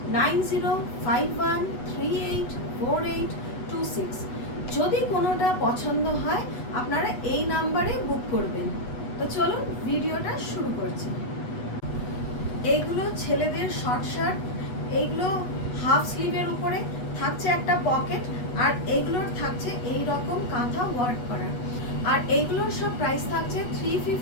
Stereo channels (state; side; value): late; right; 8.1 ms